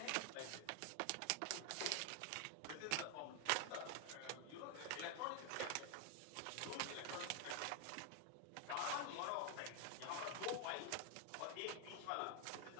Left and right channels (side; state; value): both; different; correlation 0.00